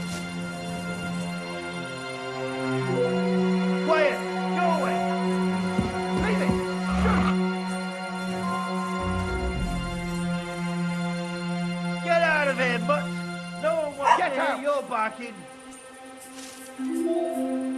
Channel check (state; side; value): identical; both; correlation 1.00